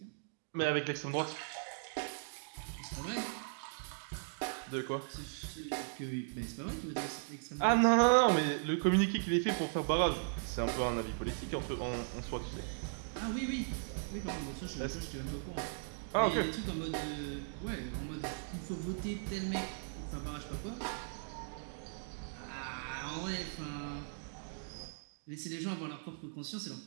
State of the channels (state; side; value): silent; left; digital silence